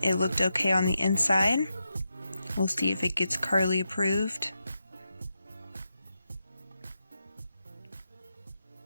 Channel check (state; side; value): inverted; both; correlation -0.87